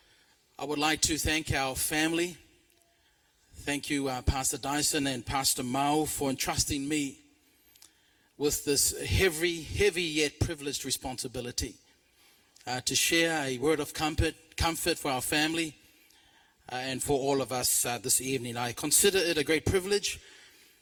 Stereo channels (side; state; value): both; identical; correlation 1.00